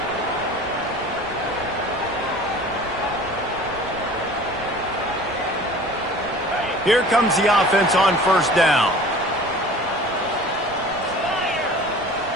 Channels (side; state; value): right; noise; rumble, 19 dB below the sound